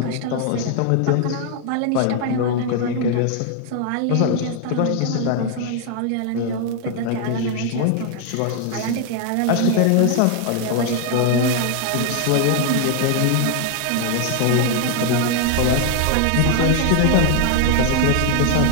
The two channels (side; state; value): both; different; correlation 0.00